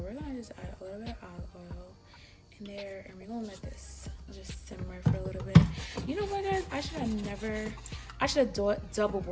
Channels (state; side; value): identical; both; correlation 1.00